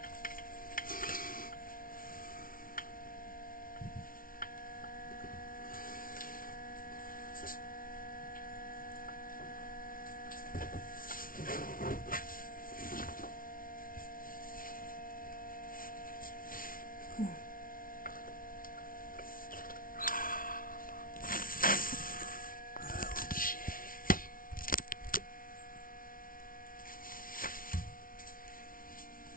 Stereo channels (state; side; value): late; right; 0.41 ms